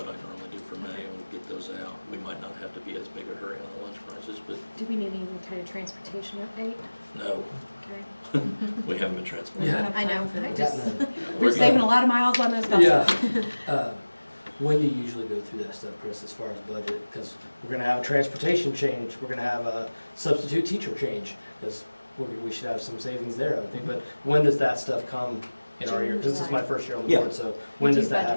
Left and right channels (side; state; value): both; inverted; correlation -1.00